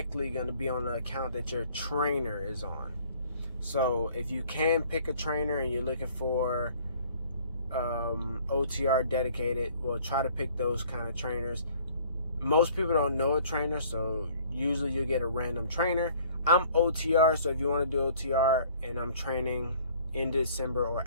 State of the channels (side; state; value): both; inverted; correlation -0.55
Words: going to be on the account that your trainer is on. So if you can pick a trainer and you're looking for OTR dedicated, well, try to pick those kind of trainers. Most people don't know a trainer, so usually you get a random trainer. I'm OTR, so if you want to do OTR, and I'm training in December or